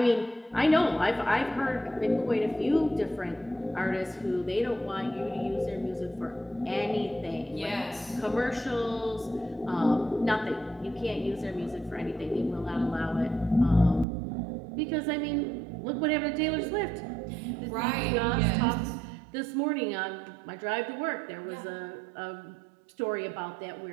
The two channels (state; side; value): drops out; left; at 14.1 s